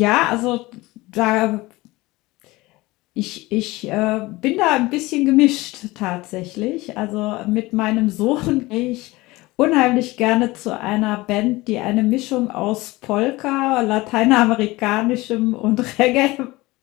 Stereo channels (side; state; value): right; quieter; 20.6 dB